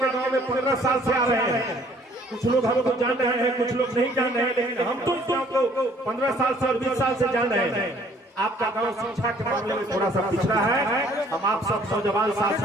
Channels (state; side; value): normal; both; correlation 0.59